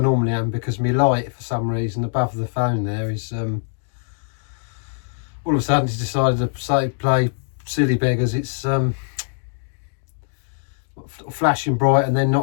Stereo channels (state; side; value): silent; right; digital silence